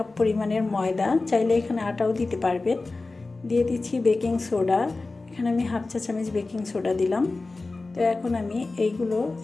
পরিমাণের ময়দা, চাইলে এখানে আটাও দিতে পারবেন। দিয়ে দিচ্ছি বেকিং সোডা, এখানে আমি 1/2 চা চামচ বেকিং সোডা দিলাম। তো এখন আমি এইগুলো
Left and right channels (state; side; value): quieter; right; 3.5 dB